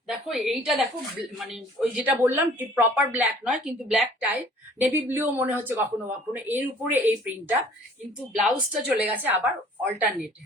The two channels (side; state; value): both; normal; correlation 0.52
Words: দেখো এইটা দেখো, মানে ওই যেটা বললাম প্রপার ব্ল্যাক নয়, কিন্তু ব্ল্যাক টাইপ, নেভি ব্লুও মনে হচ্ছে কখনো কখনো এর উপরে এই প্রিন্টটা। কিন্তু ব্লাউজটা চলে গেছে আবার অল্টারনেটে,